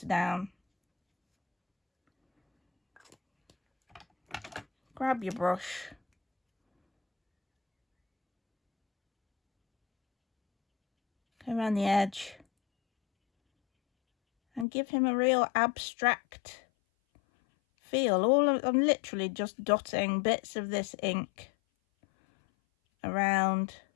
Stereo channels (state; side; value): drops out; right; at 14.7 s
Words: down, grab your brush, go around the edge and give him a real abstract feel. I'm literally just dotting bits of this ink around,